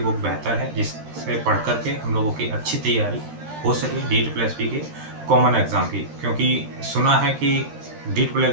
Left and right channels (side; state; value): left; late; 13 ms